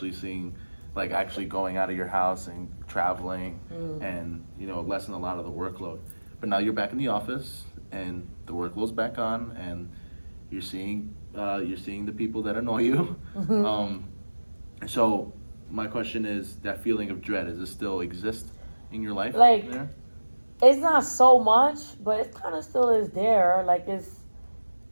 seeing, like, actually going out of your house and traveling and lessen a lot of the workload. But now you're back in the office and the workload's back on, and you're seeing the people that annoy you. So my question is, that feeling of dread, does it still exist in your life? Like, there? It's not so much, but it kind of still is there. Like,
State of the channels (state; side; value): inverted; both; correlation -1.00